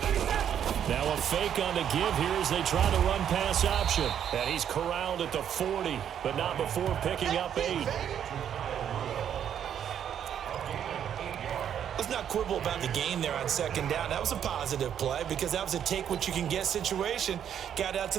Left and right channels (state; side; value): quieter; left; 9.2 dB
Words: Now a fake on the give here as they try to run pass option. And he's corralled at the 40, but not before picking up 8. Let's not quibble about the gain there on second down. That was a positive play because that was a take-what-you-can-get situation. Got out to